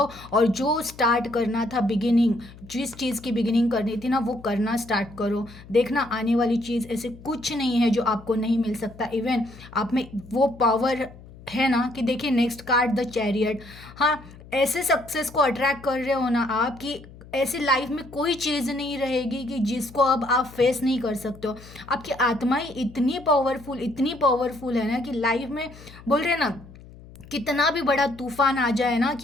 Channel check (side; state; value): left; noise; hum, 19 dB below the sound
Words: और जो स्टार्ट करना था बिगिनिंग, जिस चीज़ की बिगिनिंग करनी थी ना वो करना स्टार्ट करो। देखना आने वाली चीज़ ऐसे कुछ नहीं है जो आपको नहीं मिल सकता। इवन आप में वो पावर है ना कि देखिए नेक्स्ट कार्ड द चैरियट। हाँ, ऐसे सक्सेस को अट्रैक्ट कर रहे हो ना आप कि ऐसी लाइफ में कोई चीज़ नहीं रहेगी कि जिसको अब आप फेस नहीं कर सकते हो। आपकी आत्मा ही इतनी पावरफुल है ना कि लाइफ में बोल रहे हैं ना, कितना भी बड़ा तूफान आ जाए ना